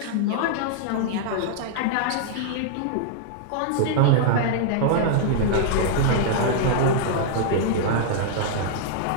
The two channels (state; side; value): different; both; correlation -0.01